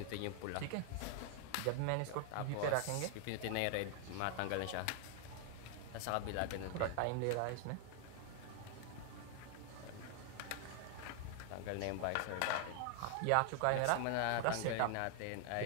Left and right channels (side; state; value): both; different; correlation 0.00